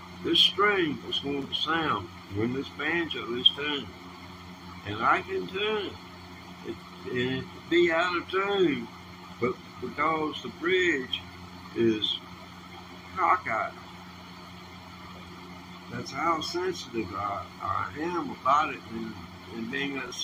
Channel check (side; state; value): both; identical; correlation 1.00